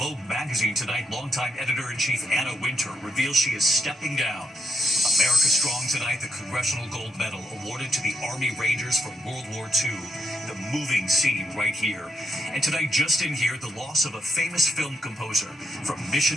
magazine tonight, longtime editor-in-chief Anna Wintour reveals she is stepping down. America Strong tonight, the Congressional Gold Medal awarded to the Army Rangers from World War II. The moving scene right here. And tonight, just in here, the loss of a famous film composer. From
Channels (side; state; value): both; normal; correlation 0.79